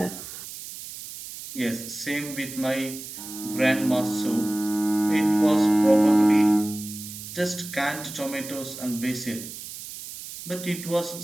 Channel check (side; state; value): right; noise; hiss, 11 dB below the sound